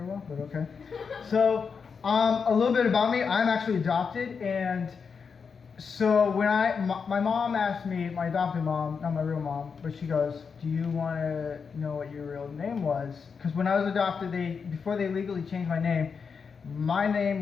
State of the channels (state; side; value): quieter; right; 5.8 dB